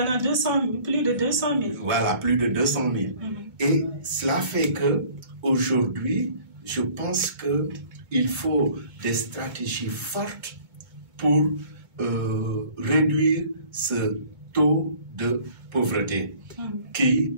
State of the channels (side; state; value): left; late; 2.2 ms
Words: en a plus de 200 000. Voilà, plus de 200 000. Et cela fait que aujourd'hui, je pense qu'il faut des stratégies fortes pour réduire ce taux de pauvreté qui,